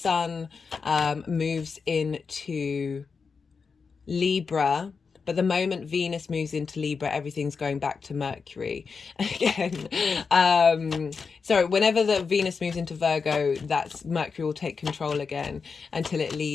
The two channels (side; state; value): right; quieter; 5.2 dB